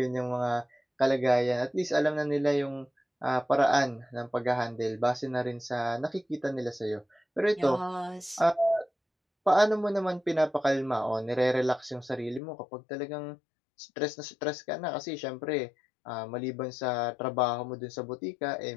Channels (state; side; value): drops out; right; at 12.4 s